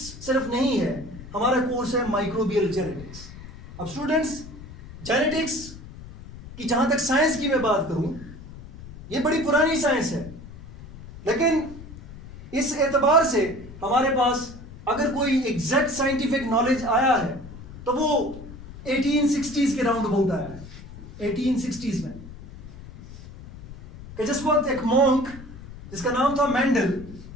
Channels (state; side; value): noise; left; rumble, 15 dB below the sound